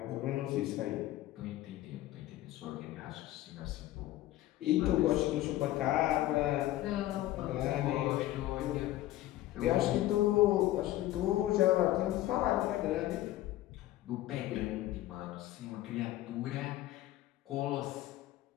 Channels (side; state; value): right; quieter; 15.2 dB